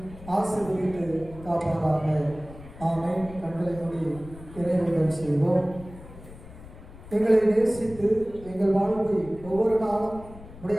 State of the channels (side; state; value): left; noise; rumble, 17 dB below the sound